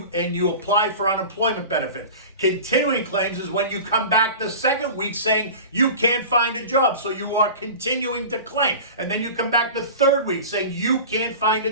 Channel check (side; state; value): both; inverted; correlation -0.35